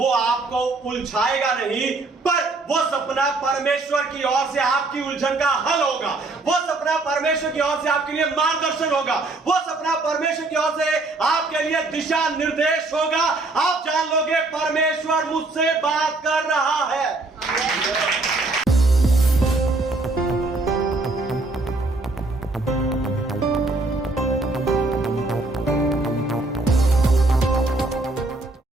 आपको उलझाएगा नहीं, पर वो सपना परमेश्वर की ओर से आपकी उलझन का हल होगा। वो सपना परमेश्वर की ओर से आपके लिए मार्गदर्शन होगा। वो सपना परमेश्वर की ओर से आपके लिए दिशा निर्देश होगा। आप जान लोगे परमेश्वर मुझसे बात कर रहा है।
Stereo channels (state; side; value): quieter; left; 3.2 dB